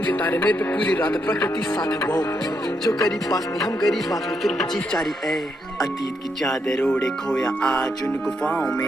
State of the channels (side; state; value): both; normal; correlation 0.79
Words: तारे मेरे पे पूरी रात प्रकृति साथ है वो जो करीब पास नहीं हम गरीब बात में फिर भी जीत चारी ए अतीत की चादर ओढ़े खोया आज उन गुफाओं